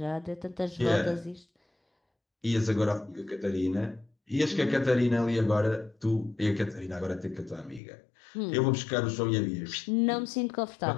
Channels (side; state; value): right; drops out; at 7.8 s